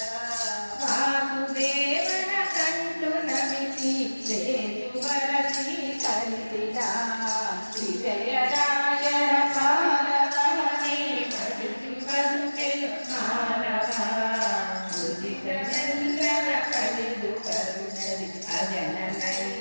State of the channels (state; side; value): inverted; both; correlation -1.00